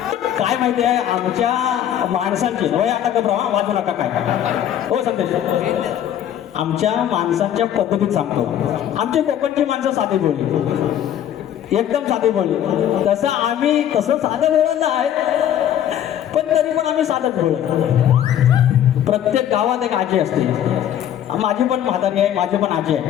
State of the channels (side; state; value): right; quieter; 10.6 dB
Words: काय माहिती आहे आमच्या माणसांची वय आता का प्रमाण वाजू नका काय हो संदेश. आमच्या माणसांच्या पद्धतीत सांगतो. आमची कोकणची माणसं साधी बोलली एकदम साधी बोलली. तसं आम्ही तसं साधं बोलत आहे पण तरी पण आम्ही साधंच बोलत. प्रत्येक गावात एक आजी असते. माझी पण म्हातारी आहे माझी पण आजी